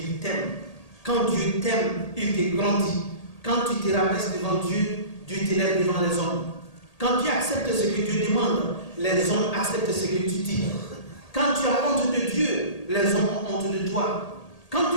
t'aiment. Quand Dieu t'aime, il te grandit. Quand tu te rabaisses devant Dieu, Dieu t'élève devant les hommes. Quand tu acceptes ce que Dieu demande, les hommes acceptent ce que tu dis. Quand tu as honte de Dieu, les hommes ont honte de toi. Quand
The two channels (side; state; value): right; late; 1.8 ms